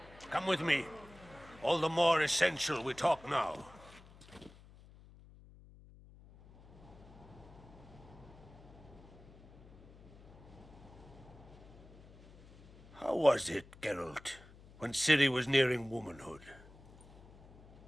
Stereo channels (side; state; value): left; noise; hum, 21 dB below the sound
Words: Come with me. All the more essential we talk now. How was it, Geralt, when Ciri was nearing womanhood?